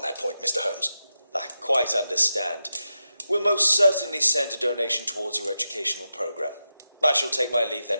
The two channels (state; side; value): inverted; both; correlation -0.89